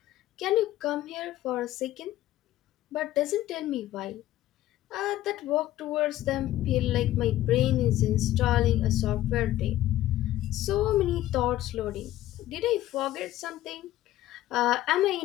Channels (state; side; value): quieter; right; 14.3 dB